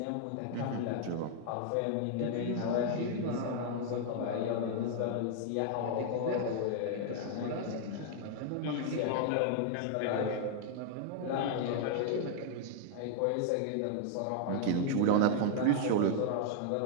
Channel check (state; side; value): different; both; correlation 0.00